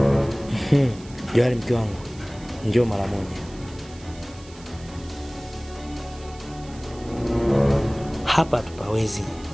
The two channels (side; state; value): right; noise; hiss, 22 dB below the sound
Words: Johari mke wangu, njoo mara moja. Hapa tupawezi.